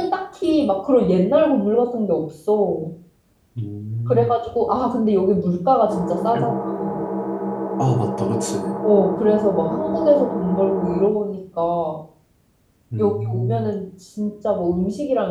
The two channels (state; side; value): identical; both; correlation 1.00